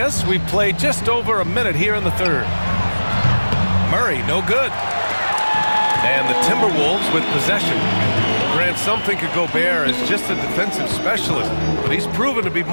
us, we've played just over a minute here in the third. Murray, no good. And the Timberwolves with possession. Grant, some think of Gobert as just a defensive specialist, but he's proven to be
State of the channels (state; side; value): inverted; both; correlation -1.00